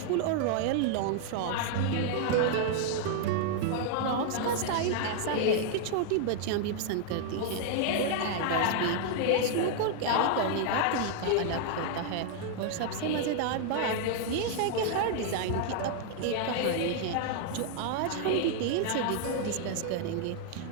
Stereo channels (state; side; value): different; both; correlation 0.00